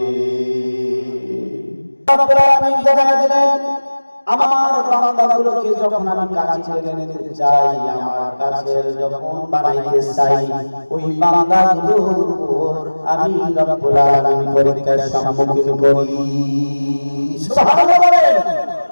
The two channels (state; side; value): inverted; both; correlation -1.00